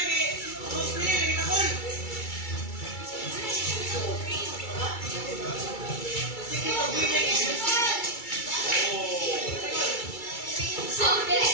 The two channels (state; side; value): late; right; 2.3 ms